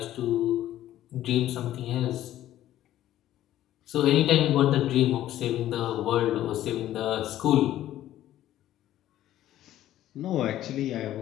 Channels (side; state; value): right; quieter; 13.2 dB